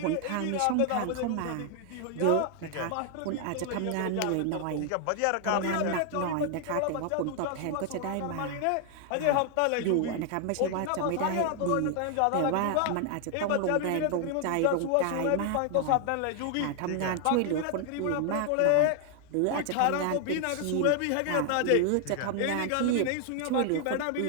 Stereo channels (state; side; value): different; both; correlation 0.00